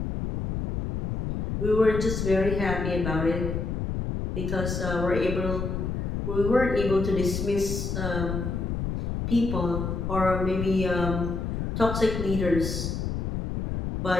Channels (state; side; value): noise; left; rumble, 3 dB below the sound